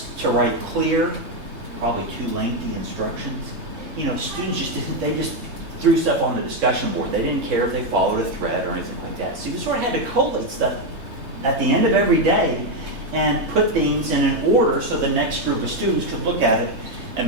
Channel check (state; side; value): late; left; 3.3 ms